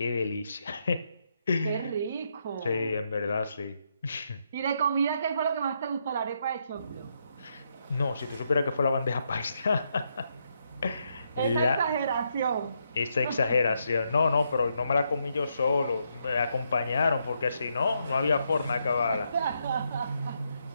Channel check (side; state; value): both; inverted; correlation -0.79